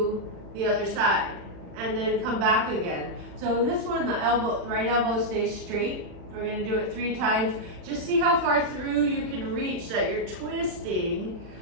the other side. And then come back again. So in this one, the right elbow stays straight. We're gonna do it 3 times. Just see how far through you can reach that you're twisting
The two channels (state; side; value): late; left; 40 ms